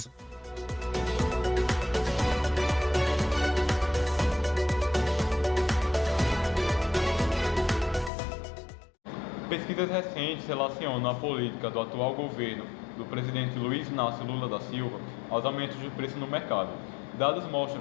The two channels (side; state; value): right; drops out; at 8.1 s